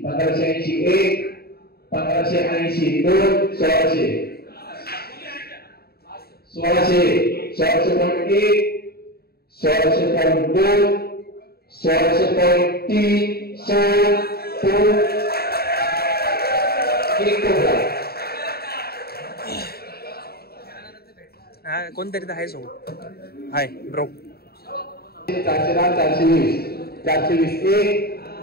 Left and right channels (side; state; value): right; late; 0.45 ms